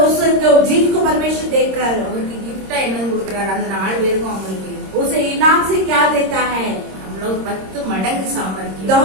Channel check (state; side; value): late; left; 26 ms